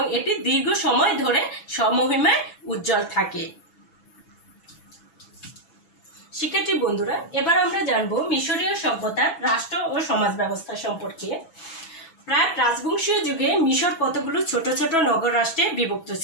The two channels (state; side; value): late; right; 6.1 ms